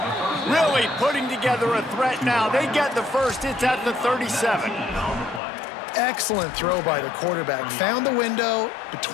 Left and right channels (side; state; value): right; drops out; at 5.4 s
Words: Really putting together a threat now. They get the first. It's at the 37. Excellent throw by the quarterback. Found the window